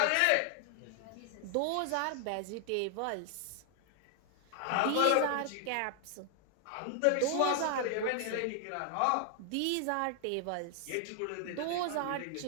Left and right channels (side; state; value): both; different; correlation 0.00